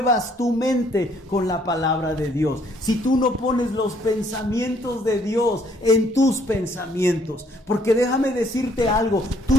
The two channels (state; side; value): normal; both; correlation 0.64